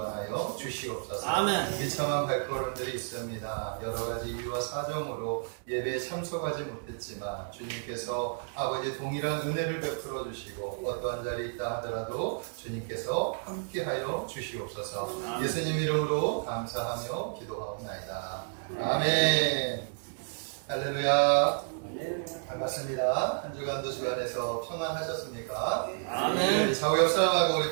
주시옵소서. 아멘. 비참한 발걸음들이 있습니다. 여러 가지 이유와 사정으로 예배에 참석하지 못했지만 주님께서 아버지 동일한 은혜를 베풀어 주시고 어떠한 자리에 있다 하더라도 주님께서 함께하여 주시옵소서. 예수님 이름으로 감사하며 기도하옵나이다. 아멘. 할렐루야. 반갑습니다. 한 주간도 주간에서 평안하셨습니까? 아멘. 좌우 옆 사람하고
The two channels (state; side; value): silent; left; digital silence